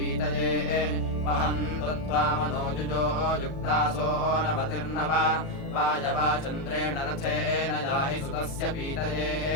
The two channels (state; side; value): late; right; 36 ms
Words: वहन्तु त्वामनोजुजो युक्तासो नवतिर्नव वायवाचन्द्रेण रथेन याहि सुतस्य पीतये